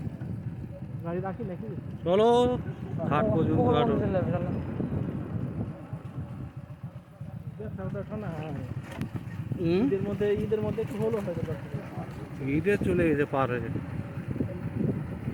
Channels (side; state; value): both; identical; correlation 1.00